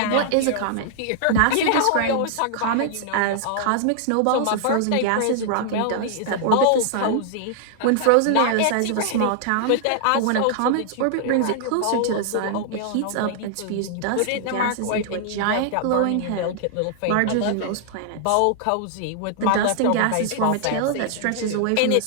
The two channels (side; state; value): both; different; correlation -0.01